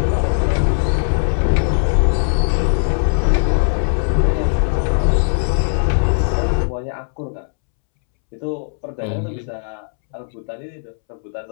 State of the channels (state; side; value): silent; right; 67 dB below the other